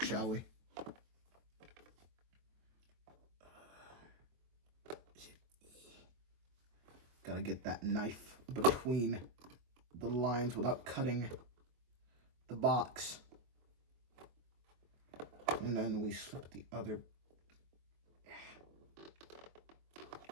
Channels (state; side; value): late; left; 23 ms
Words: shall we? Gotta get that knife between the lines without cutting the box. And then we slip the other.